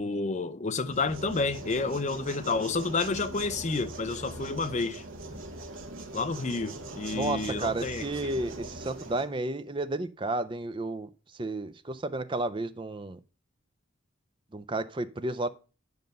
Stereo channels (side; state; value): both; normal; correlation 0.30